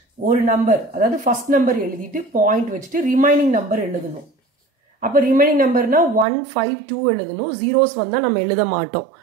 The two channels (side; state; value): left; drops out; at 6.2 s